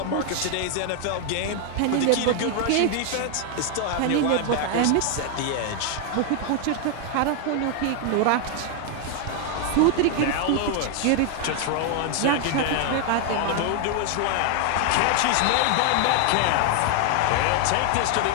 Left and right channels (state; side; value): different; both; correlation 0.00